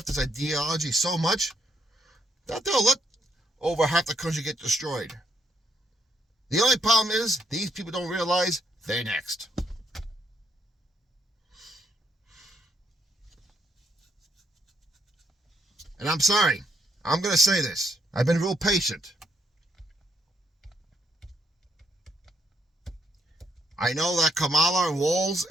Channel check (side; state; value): both; normal; correlation 0.75